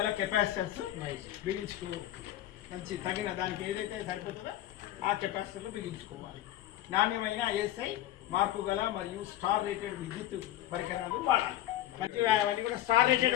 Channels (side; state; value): right; quieter; 13.7 dB